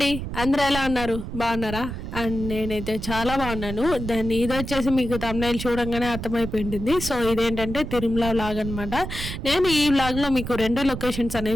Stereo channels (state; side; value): noise; right; rumble, 7 dB below the sound